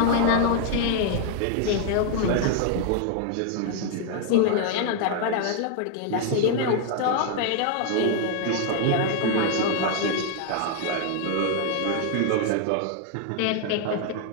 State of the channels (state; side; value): different; both; correlation 0.00